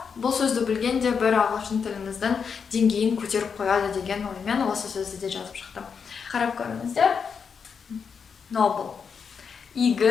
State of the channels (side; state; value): right; quieter; 6.2 dB